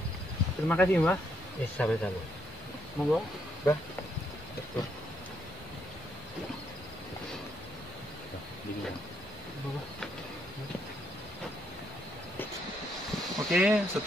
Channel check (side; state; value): both; normal; correlation 0.74